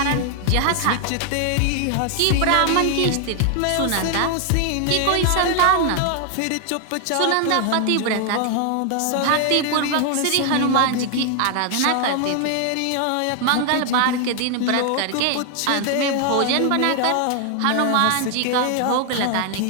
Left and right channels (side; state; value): both; different; correlation 0.00